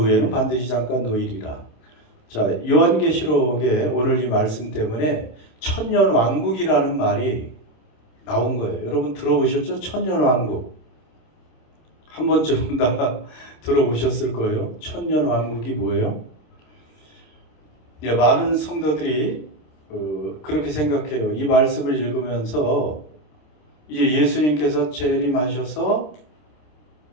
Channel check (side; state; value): right; late; 26 ms